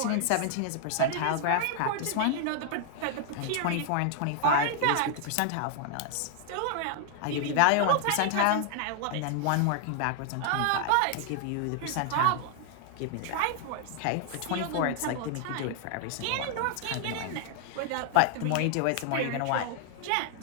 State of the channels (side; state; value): both; different; correlation 0.00